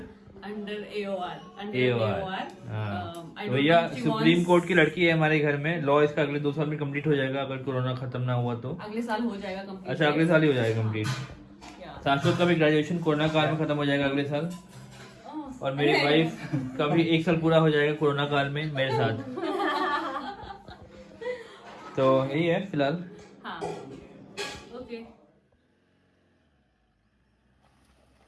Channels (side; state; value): both; identical; correlation 1.00